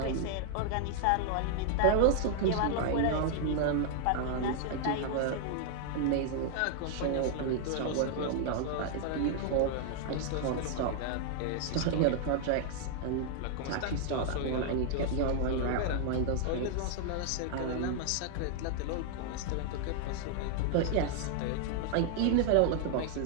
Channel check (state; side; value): different; both; correlation 0.00